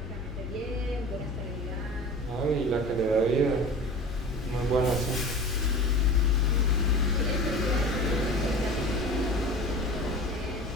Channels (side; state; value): both; normal; correlation 0.37